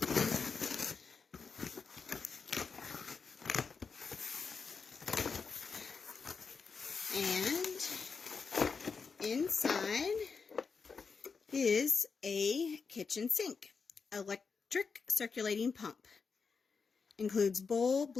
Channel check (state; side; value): quieter; right; 5.2 dB